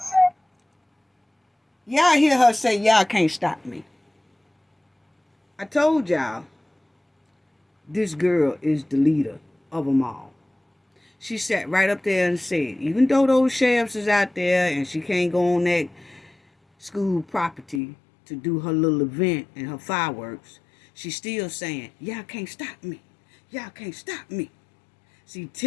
Y'all hear her say, y'all can't stop me. I told y'all, this girl is the leader of them all. She sat right up there and said, even though those sheriffs is out there and she can't go on that school property to do her little event and her fireworks, she's still saying, y'all can't stop me. Y'all can't stop me. See,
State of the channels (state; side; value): drops out; right; at 17.8 s